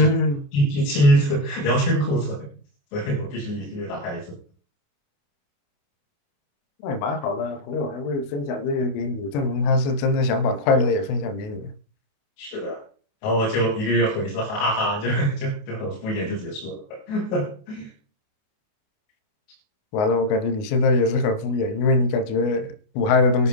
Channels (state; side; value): late; right; 28 ms